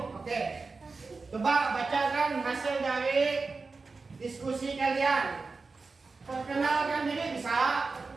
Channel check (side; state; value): left; quieter; 4.1 dB